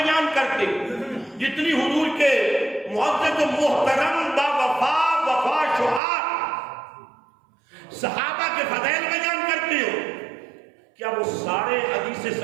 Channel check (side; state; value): left; drops out; at 6.0 s